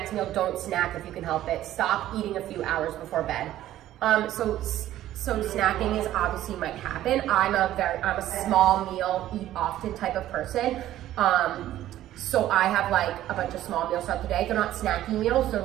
meal. Don't snack if you can help it. Stop eating a few hours before bed. So snacking is obviously might happen. I'm a small meal, eat often type of person. So I have like a bunch of small meals throughout the day. They're not snacky meals. They're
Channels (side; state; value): left; quieter; 13.4 dB